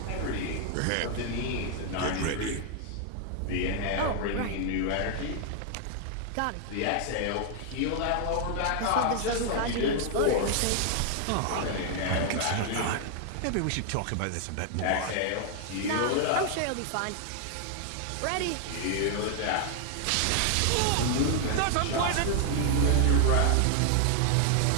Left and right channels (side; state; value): both; different; correlation 0.00